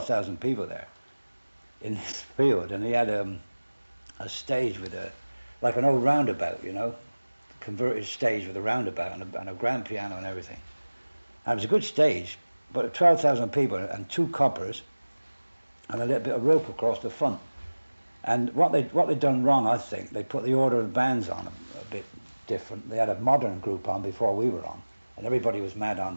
people there in this field, and he had a stage with like an old roundabout, you know, converted stage with a roundabout and a grand piano and everything. And it was a good stage, but 12,000 people and 2 coppers and a little bit of rope across the front. And what they'd done wrong, I think, they put the order of the bands on a bit different. They had a modern group on before we were on, and everybody was mad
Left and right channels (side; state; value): both; inverted; correlation -1.00